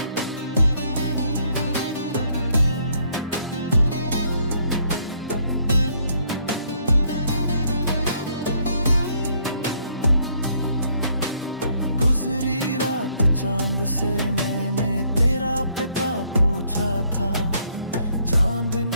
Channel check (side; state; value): both; inverted; correlation -0.68